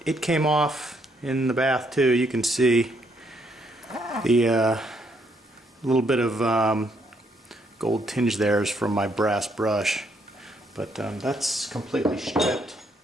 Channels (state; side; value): normal; both; correlation 0.72